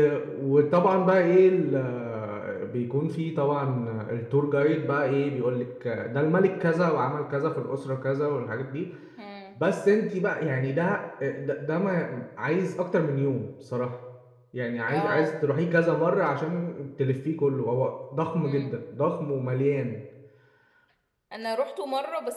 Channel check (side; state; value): both; identical; correlation 1.00